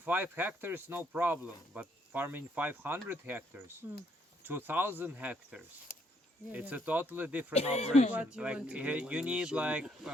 hectares, no problem, but farming 500 hectares, 2,000 hectares, it's a totally different operation. What you Like want to you need like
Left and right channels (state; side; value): normal; both; correlation 0.71